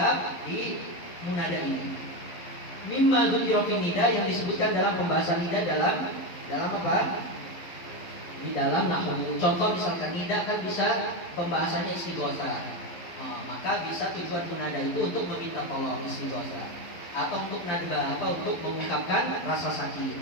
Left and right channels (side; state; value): right; late; 11 ms